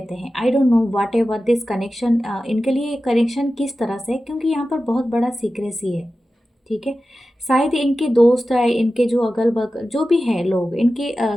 हैं। I don't know what ever this connection, इनके लिए कनेक्शन किस तरह से, क्योंकि यहाँ पर बहुत बड़ा सीक्रेसी है। ठीक है, शायद इनके दोस्त है, इनके जो अगल बगल जो भी हैं लोग इनके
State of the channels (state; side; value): normal; both; correlation 0.94